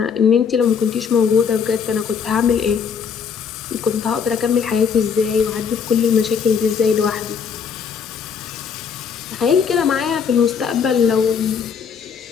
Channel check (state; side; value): quieter; right; 6.6 dB